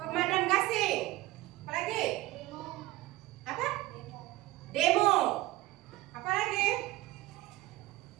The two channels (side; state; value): left; quieter; 18.1 dB